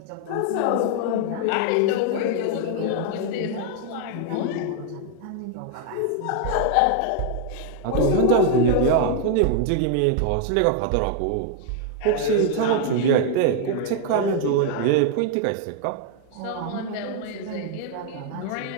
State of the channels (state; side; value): different; both; correlation 0.00